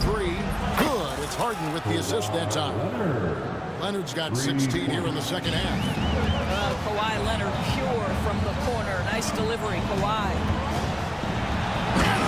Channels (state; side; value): identical; both; correlation 1.00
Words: three. Good. It's Harden with the assist that time. Leonard's got 16 here in the second half. Kawhi Leonard pure from the corner. Nice delivery, Kawhi. And